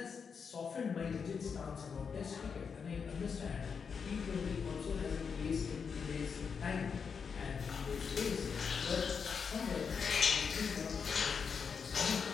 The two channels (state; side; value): quieter; right; 6.1 dB